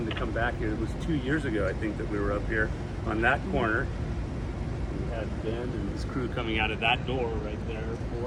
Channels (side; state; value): both; identical; correlation 1.00